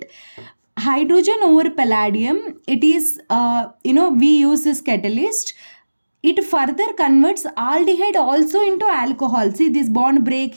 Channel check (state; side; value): inverted; both; correlation -1.00